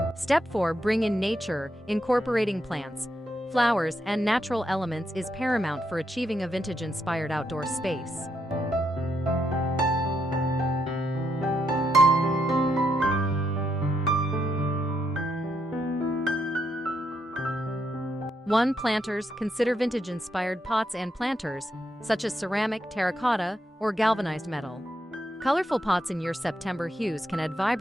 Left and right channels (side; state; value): both; normal; correlation 0.79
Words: Step 4. Bring in nature. Incorporating plants, flowers, and natural elements is paramount for achieving a vintage-inspired outdoor space. One. Planters. Consider vintage-inspired pots and planters, such as ceramic, terracotta, or galvanized metal. Colorful pots in your September hues can add